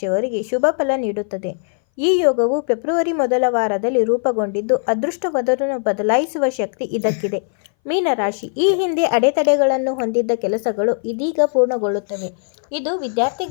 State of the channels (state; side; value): silent; right; 61 dB below the other